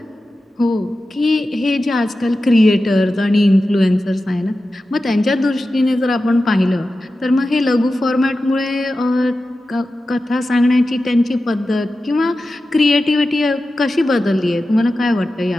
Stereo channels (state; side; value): normal; both; correlation 0.93